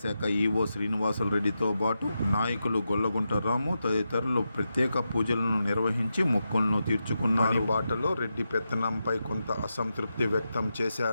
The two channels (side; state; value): both; inverted; correlation -0.88